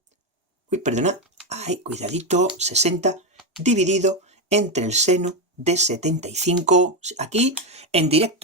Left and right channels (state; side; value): normal; both; correlation 0.08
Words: Uy, perdona. Ay, cuidadito. 60 dividido entre el seno de 75. Aquí, en